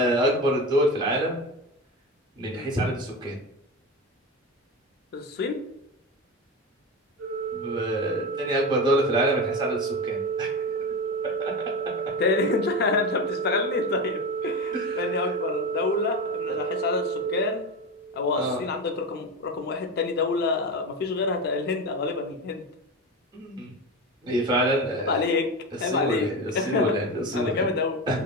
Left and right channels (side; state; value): both; normal; correlation 0.22